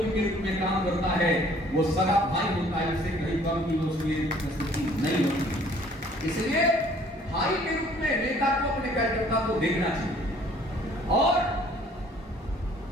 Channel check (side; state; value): both; normal; correlation 0.57